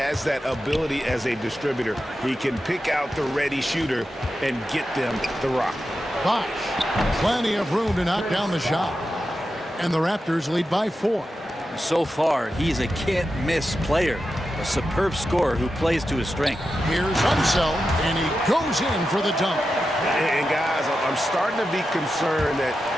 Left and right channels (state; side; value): normal; both; correlation 0.90